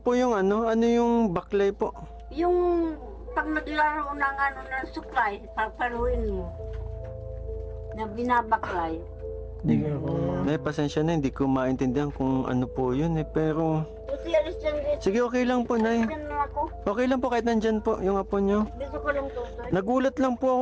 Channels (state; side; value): identical; both; correlation 1.00